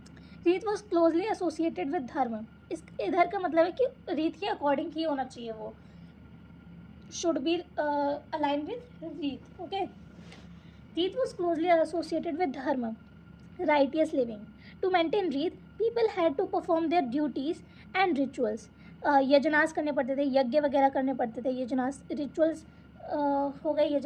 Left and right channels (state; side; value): identical; both; correlation 1.00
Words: रीत वॉज क्लोजली एसोसिएटेड विद धर्म। इस इधर का मतलब है कि रीत के अकॉर्डिंग ही होना चाहिए, वो should be align with Rita. Okay. Rita was closely associated with dharma, righteous living. To maintain Rita, people had to perform their duties and rituals. Yajnas करने पड़ते थे, यज्ञ वगैरह करने पड़ते थे। यजनास रिचुअल्स हो गए,